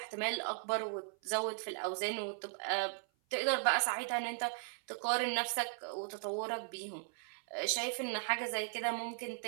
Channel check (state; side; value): silent; left; 53 dB below the other